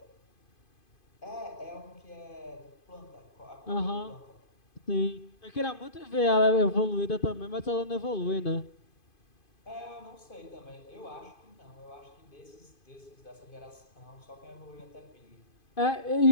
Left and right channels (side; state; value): right; late; 2.5 ms